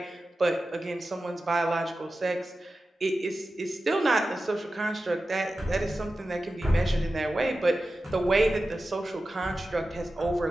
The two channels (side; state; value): both; normal; correlation 0.93